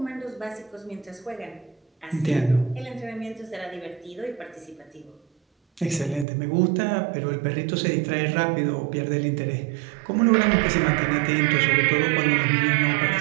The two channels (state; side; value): drops out; left; at 6.2 s